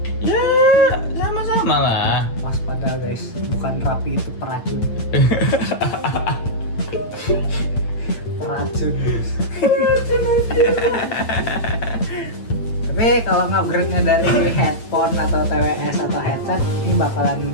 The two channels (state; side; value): late; right; 8.9 ms